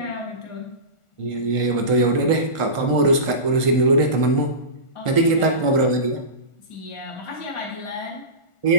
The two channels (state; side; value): late; right; 1.4 ms